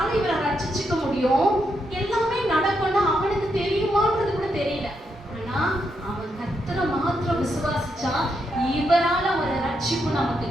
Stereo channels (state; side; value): normal; both; correlation 0.81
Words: இவரை ரட்சிச்சுக்க முடியும், எல்லாமே நடக்கும்னு அவனுக்கு தெரியுமான்றது கூட தெரியல. ஆனா அவன் கர்த்தரை மாத்திரம் விசுவாசிச்சா இவரால ஒரு ரட்சிப்பு நமக்கு